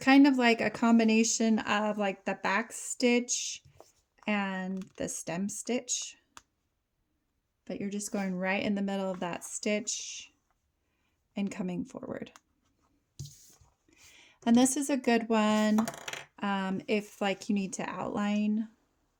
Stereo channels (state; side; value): identical; both; correlation 1.00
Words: of like a combination of like the back stitch and the stem stitch, but you're just going right in the middle of that stitch and coming forward. And this is a good one if like you need to outline